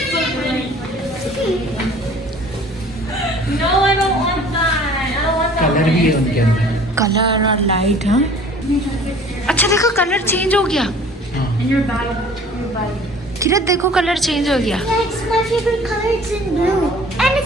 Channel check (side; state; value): both; normal; correlation 0.49